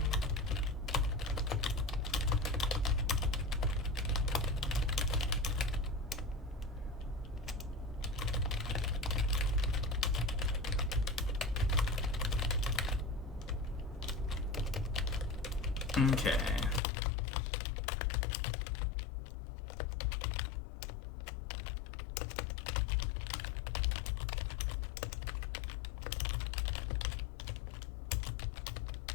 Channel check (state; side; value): drops out; right; at 16.8 s